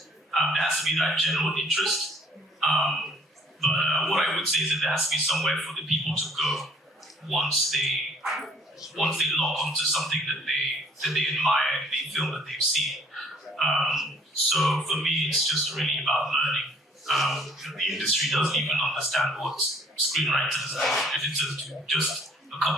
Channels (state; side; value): normal; both; correlation 0.59